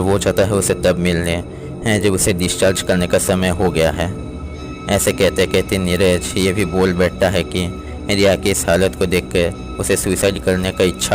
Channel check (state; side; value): identical; both; correlation 1.00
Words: चाहता है उसे तब मिलने जब उसे डिस्चार्ज करने का समय हो गया है। ऐसे कहते कहते नीरज ये भी बोल बैठता है कि रिया की इस हालत को देखकर उसे सुसाइड करने का इच्छा